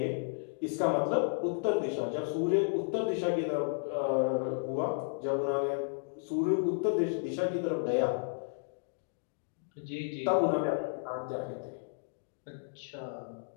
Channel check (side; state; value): right; silent; digital silence